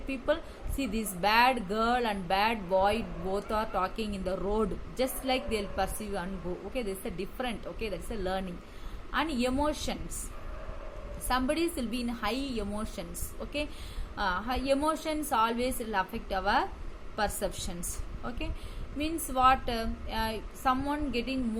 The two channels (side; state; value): both; identical; correlation 1.00